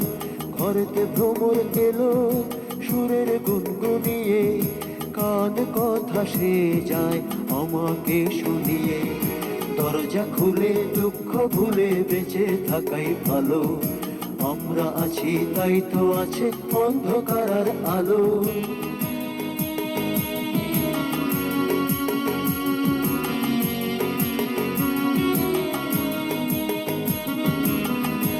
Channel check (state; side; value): identical; both; correlation 1.00